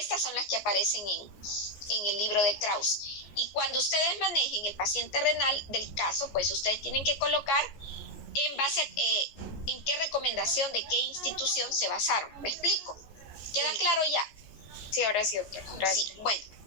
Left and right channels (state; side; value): late; right; 14 ms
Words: son las que aparecen en el libro de Krause. Y cuando ustedes manejen el paciente renal del caso, pues ustedes tienen que colocar en base a en qué recomendación de qué institución se basaron. ¿Me explico? ¿Queda claro ya? Sí, ahora sí, doctora. Gracias. Sí, bueno.